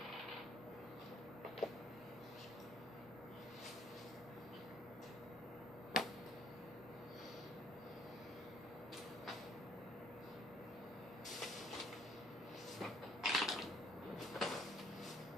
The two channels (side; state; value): both; normal; correlation 0.63